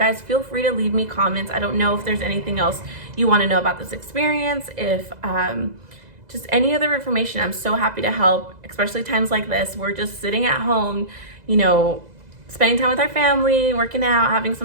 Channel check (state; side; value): late; left; 2.0 ms